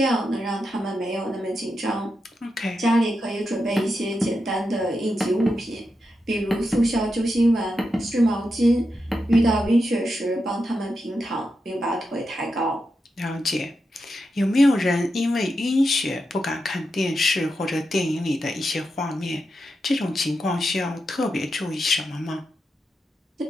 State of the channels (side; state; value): both; normal; correlation 0.87